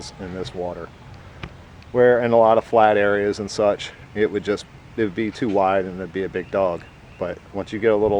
in this water. Where in a lot of flat areas and such, it would be too wide and it'd be a big dog. But once you get a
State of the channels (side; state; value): both; identical; correlation 1.00